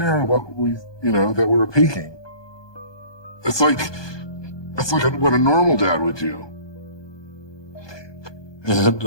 what we, you know, that we were peeking? It's like what a normal dad would do.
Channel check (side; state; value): right; late; 1.2 ms